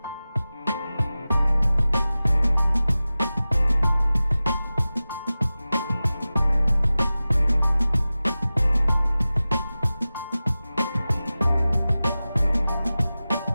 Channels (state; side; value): inverted; both; correlation -0.96